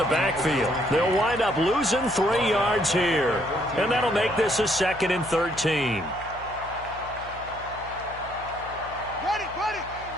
backfield. They'll wind up losing 3 yards here. And that'll make this a 2nd and 13.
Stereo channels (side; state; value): left; noise; hum, 17 dB below the sound